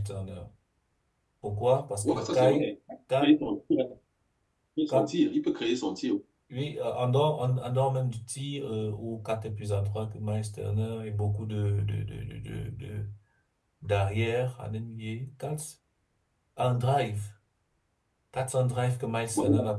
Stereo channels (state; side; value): identical; both; correlation 1.00